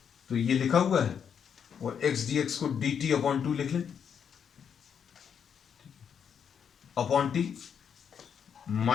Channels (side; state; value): right; quieter; 7.6 dB